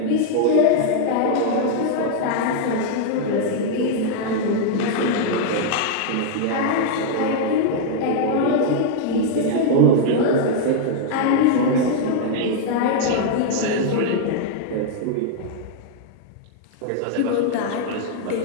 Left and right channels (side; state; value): both; different; correlation 0.00